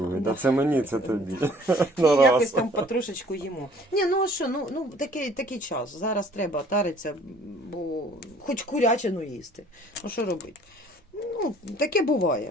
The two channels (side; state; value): both; normal; correlation 0.55